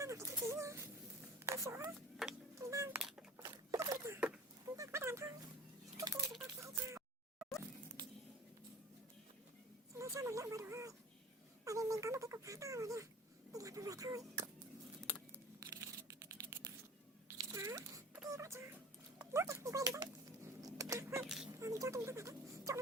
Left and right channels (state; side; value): normal; both; correlation 0.42